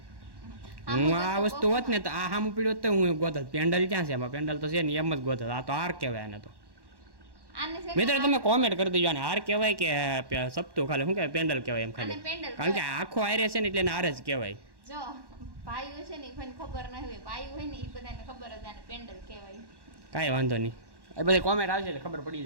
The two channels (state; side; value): late; left; 1.1 ms